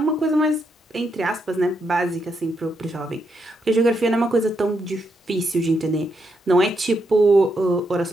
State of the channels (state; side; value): normal; both; correlation 0.80